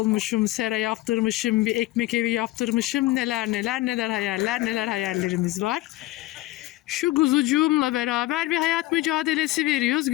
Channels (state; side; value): quieter; right; 17.7 dB